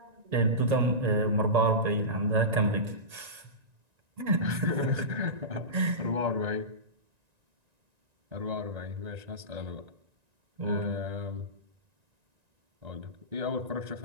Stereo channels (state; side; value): late; left; 1.9 ms